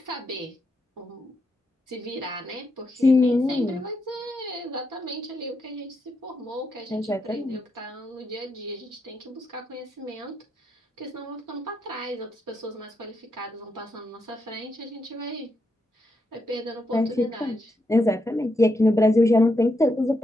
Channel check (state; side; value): normal; both; correlation 0.82